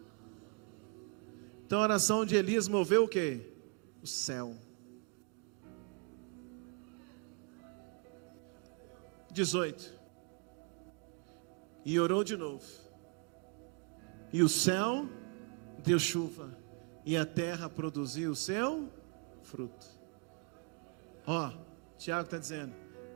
Então a oração de Elias moveu o quê? O céu. 18. E orou de novo. E o céu deu chuva. E a terra produziu o seu fruto. Tiago está dizendo,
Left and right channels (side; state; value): left; quieter; 33.3 dB